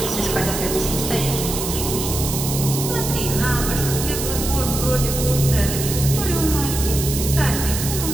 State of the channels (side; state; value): right; noise; hiss, 4 dB below the sound